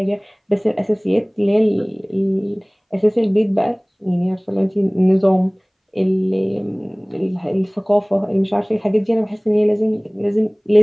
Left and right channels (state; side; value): identical; both; correlation 1.00